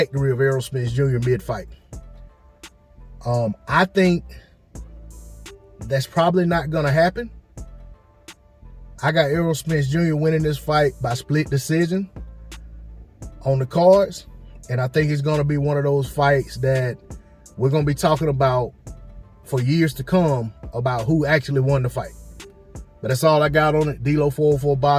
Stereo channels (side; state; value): both; identical; correlation 1.00